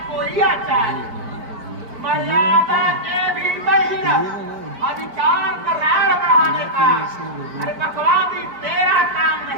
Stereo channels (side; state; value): left; late; 4.5 ms